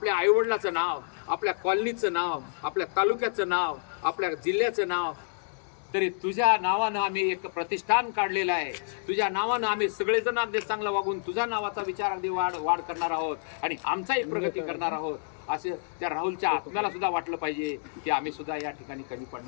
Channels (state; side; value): silent; right; 59 dB below the other